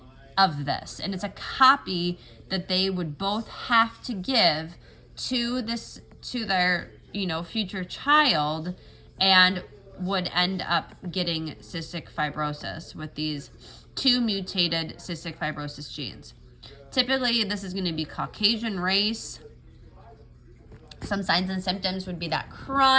of this, and it's a copy that they would both have to give to their future child, and would end up getting cystic fibrosis with these 2 mutated cystic fibrosis genes. Typically, this is going to be Caucasian race. Some signs and symptoms would be that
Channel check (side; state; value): both; identical; correlation 1.00